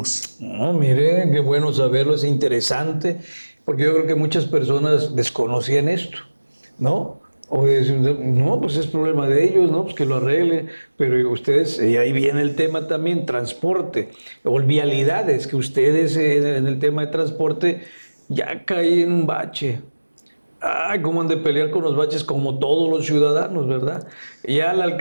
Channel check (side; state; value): both; inverted; correlation -1.00